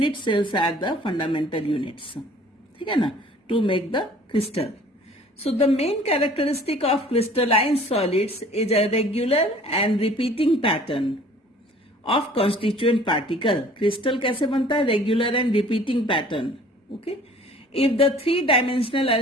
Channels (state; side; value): normal; both; correlation 0.51